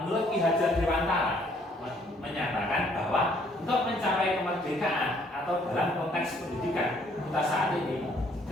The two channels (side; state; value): both; normal; correlation 0.64